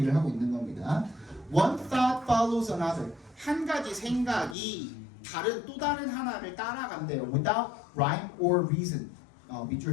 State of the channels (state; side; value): drops out; right; at 4.5 s